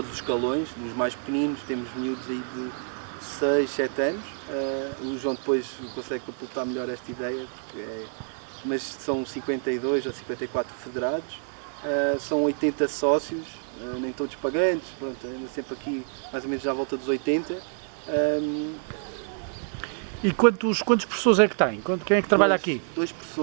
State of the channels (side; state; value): left; silent; 60 dB below the other